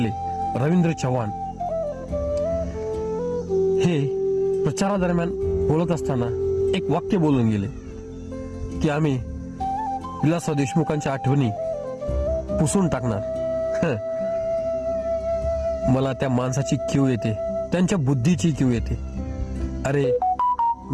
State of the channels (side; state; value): both; identical; correlation 1.00